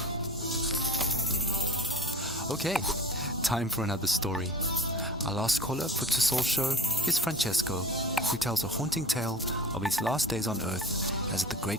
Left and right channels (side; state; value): both; normal; correlation 0.38